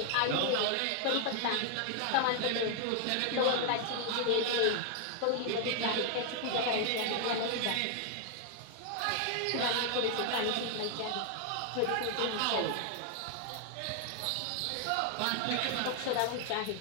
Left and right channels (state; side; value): different; both; correlation 0.00